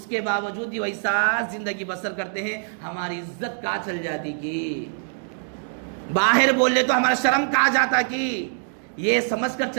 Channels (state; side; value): silent; left; digital silence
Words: کے باوجود بھی ویسا زندگی بسر کرتے ہیں، ہماری عزت کہاں چل جاتی کی، باہر بول لے تو ہمارا شرم کہاں جاتا کی، یہ سمجھ کر